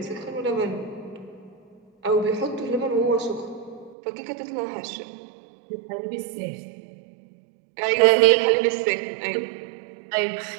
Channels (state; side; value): drops out; left; at 4.0 s